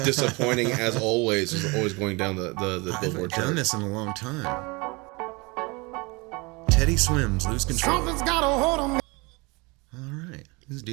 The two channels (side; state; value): left; quieter; 26.8 dB